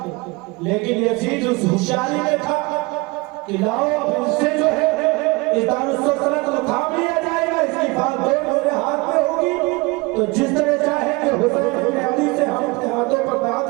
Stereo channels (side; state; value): left; quieter; 24.9 dB